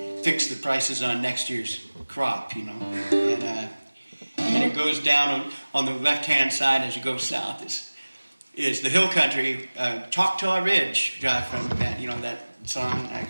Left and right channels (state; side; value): inverted; both; correlation -1.00